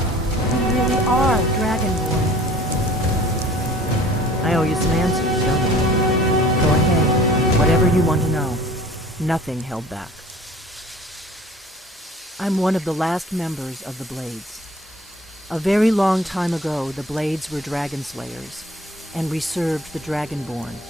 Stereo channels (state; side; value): normal; both; correlation 0.48